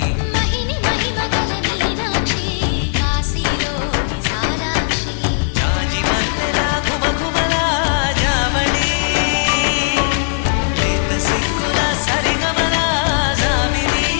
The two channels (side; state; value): right; silent; digital silence